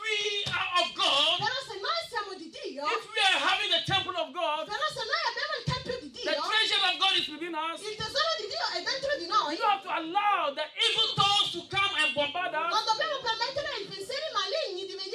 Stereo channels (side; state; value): both; identical; correlation 1.00